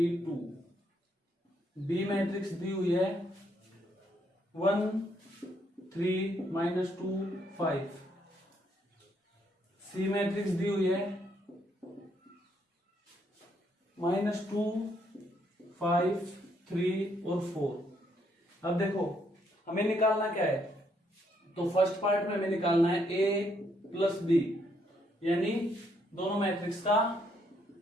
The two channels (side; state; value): both; normal; correlation 0.72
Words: 2। बी मैट्रिक्स दी हुई है 1 3 -2 5। सी मैट्रिक्स दी हुई है -2 5 3 और 4। अब देखो हमें निकालना क्या है, तो फर्स्ट पार्ट में हमें निकालना है a प्लस बी, यानी दोनों मैट्रिक्स का